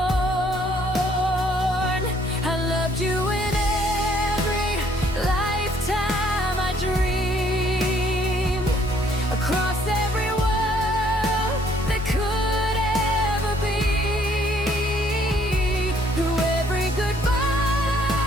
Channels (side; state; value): both; normal; correlation 0.64